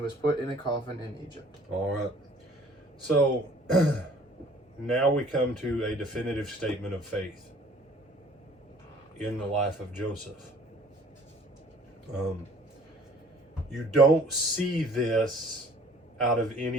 was put in a coffin in Egypt. All right. So now we come to a definitive statement of faith in the life of Joseph. You don't see this out of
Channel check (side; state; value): both; normal; correlation 0.54